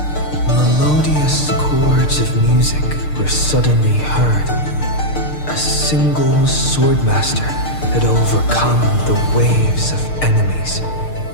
Melodious chords of music were suddenly heard. A single swordmaster had overcome the waves of enemies.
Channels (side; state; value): right; late; 6.6 ms